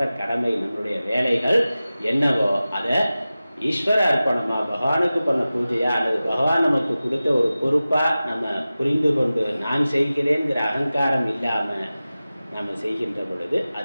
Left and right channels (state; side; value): inverted; both; correlation -0.96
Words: கடமை, நம்மளுடைய வேலைகள் என்னவோ அதை ஈஸ்வர அர்ப்பணமாக பகவானுக்கு பண்ண பூஜையா அல்லது பகவான் நமக்கு கொடுத்த ஒரு பொறுப்பாக நம்ம புரிந்து கொண்டு நான் செய்கிறேங்கிற அகங்காரம் இல்லாமல் நாம் செய்கின்ற பொழுது